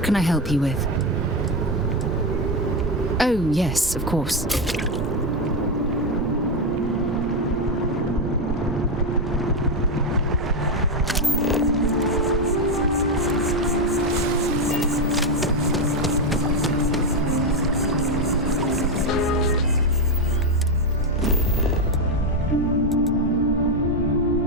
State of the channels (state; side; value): normal; both; correlation 0.07